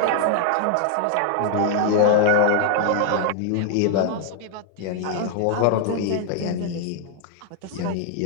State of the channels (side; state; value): both; different; correlation 0.00